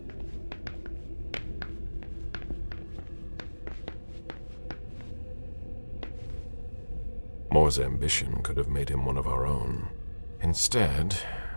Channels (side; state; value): both; inverted; correlation -1.00